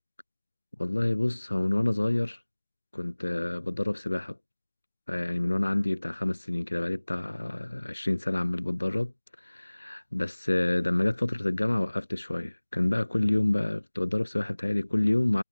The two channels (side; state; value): both; inverted; correlation -1.00